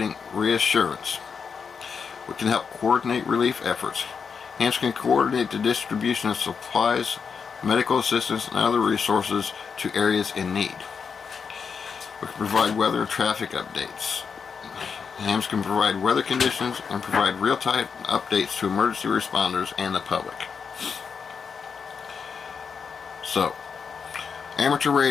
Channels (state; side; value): quieter; right; 6.0 dB